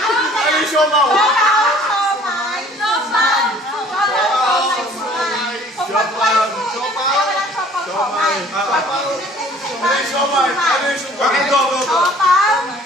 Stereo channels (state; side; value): normal; both; correlation 0.53